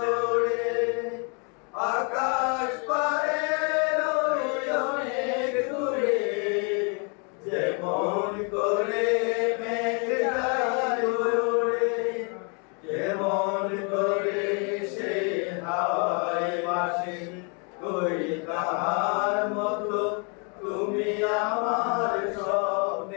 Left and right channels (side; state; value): right; quieter; 36.3 dB